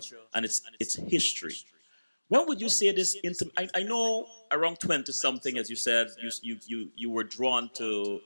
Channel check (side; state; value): both; inverted; correlation -1.00